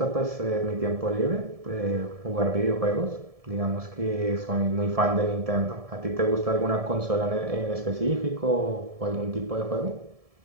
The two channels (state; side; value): late; left; 1.7 ms